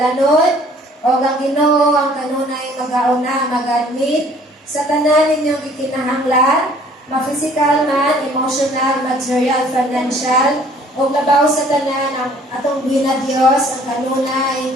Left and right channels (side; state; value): both; normal; correlation 0.56